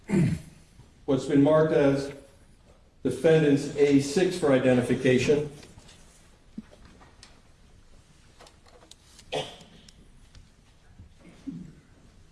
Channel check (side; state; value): both; identical; correlation 1.00